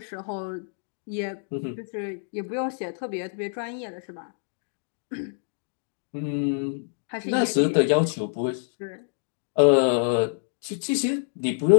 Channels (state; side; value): silent; right; digital silence